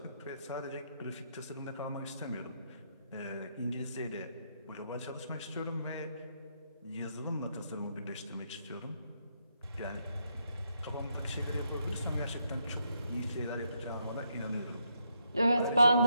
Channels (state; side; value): inverted; both; correlation -0.78